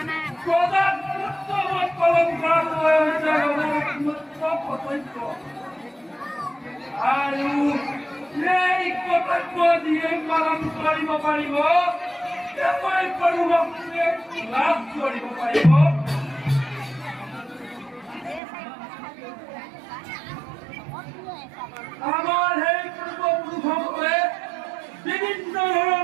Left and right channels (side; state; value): left; drops out; at 18.4 s